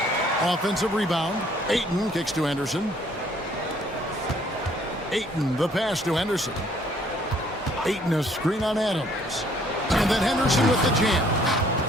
Offensive rebound. Ayton kicks to Henderson. Ayton, the pass to Henderson. Ayton, a screen on Adams. And then Henderson with the jam.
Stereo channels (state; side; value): normal; both; correlation 0.62